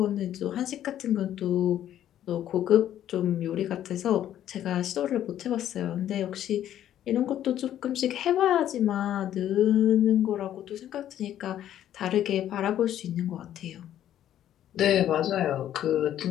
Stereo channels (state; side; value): quieter; right; 11.4 dB